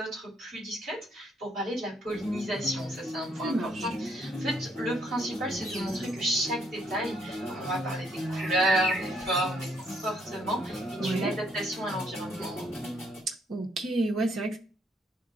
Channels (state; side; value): normal; both; correlation 0.70